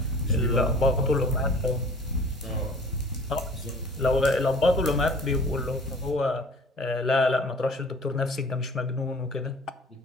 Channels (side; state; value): both; normal; correlation 0.47